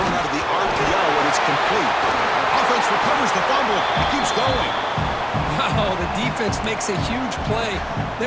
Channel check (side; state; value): both; identical; correlation 1.00